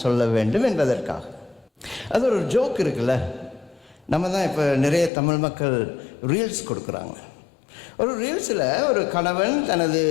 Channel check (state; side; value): drops out; right; at 5.1 s